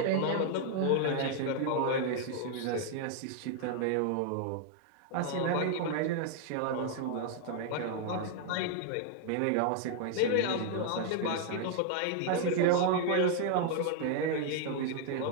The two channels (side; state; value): both; different; correlation 0.00